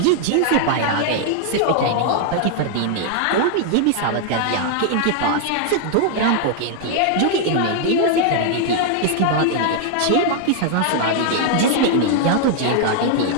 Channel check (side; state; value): both; different; correlation 0.00